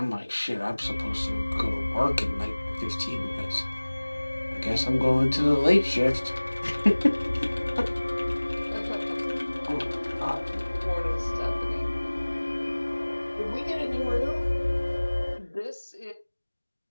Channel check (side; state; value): both; inverted; correlation -1.00